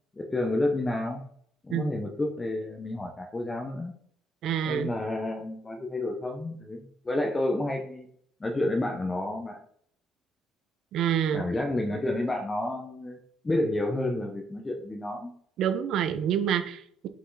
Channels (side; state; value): both; normal; correlation 0.76